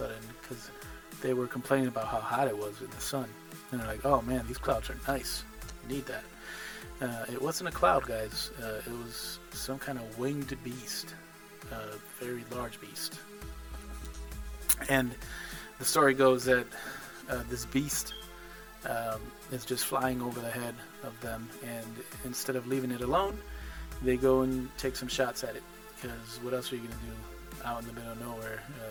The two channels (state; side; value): identical; both; correlation 1.00